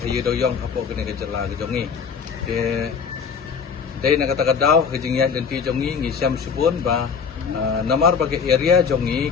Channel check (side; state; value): right; quieter; 6.1 dB